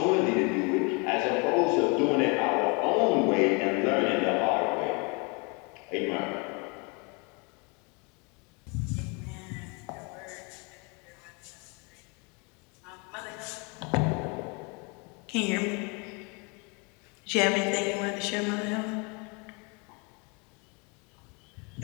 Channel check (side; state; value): right; quieter; 31.6 dB